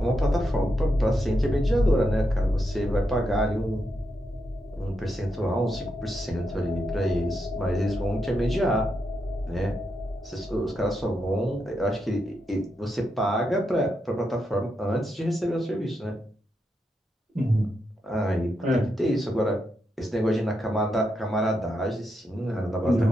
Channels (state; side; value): normal; both; correlation 0.83